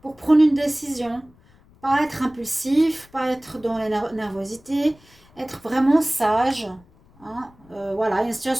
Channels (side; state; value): left; noise; rumble, 29 dB below the sound